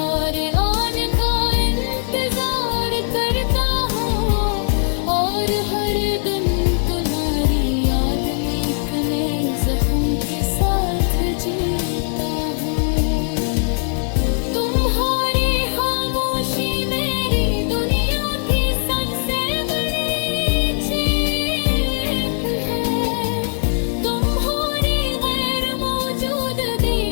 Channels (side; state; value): right; silent; 61 dB below the other